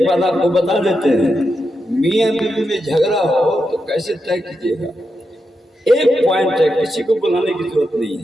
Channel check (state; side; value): normal; both; correlation 0.86